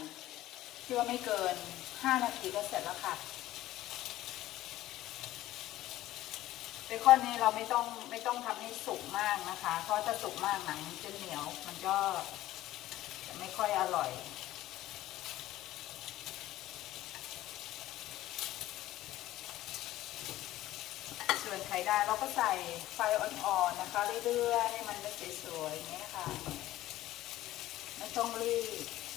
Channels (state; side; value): quieter; right; 15.2 dB